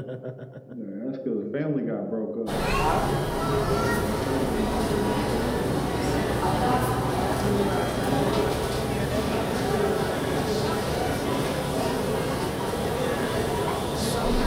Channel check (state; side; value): identical; both; correlation 1.00